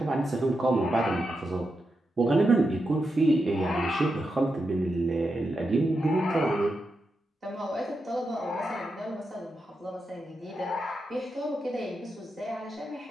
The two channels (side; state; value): both; normal; correlation 0.87